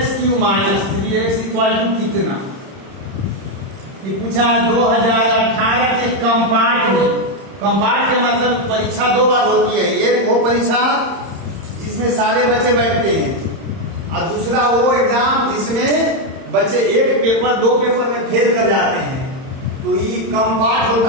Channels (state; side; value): late; left; 31 ms